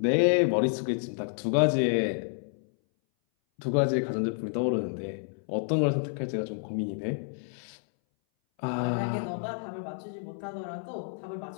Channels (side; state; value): right; silent; 58 dB below the other